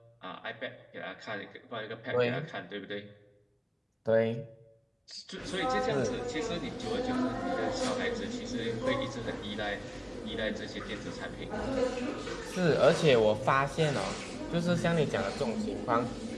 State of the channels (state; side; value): identical; both; correlation 1.00